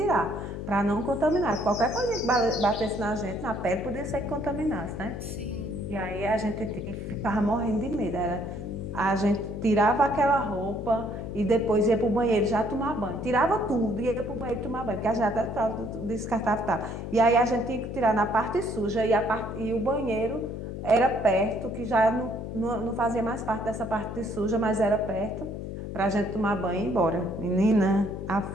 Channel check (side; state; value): left; noise; hum, 7 dB below the sound